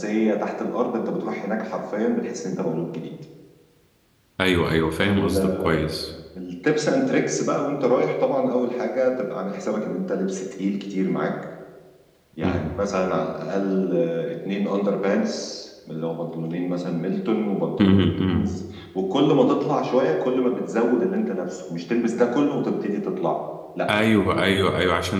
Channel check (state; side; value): identical; both; correlation 1.00